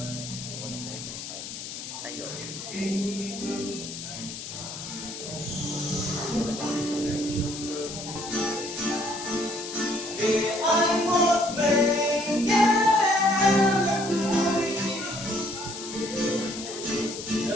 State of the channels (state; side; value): noise; left; hiss, 9 dB below the sound